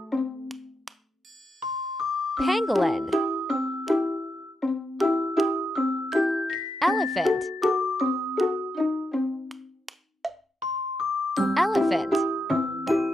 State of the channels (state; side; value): normal; both; correlation 0.85